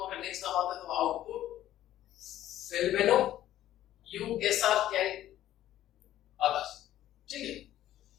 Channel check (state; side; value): quieter; right; 13.0 dB